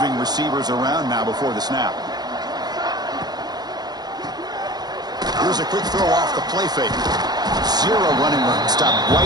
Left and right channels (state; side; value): late; left; 0.20 ms